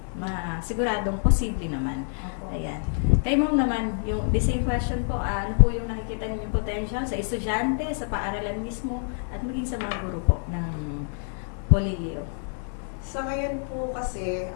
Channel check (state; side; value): silent; right; 60 dB below the other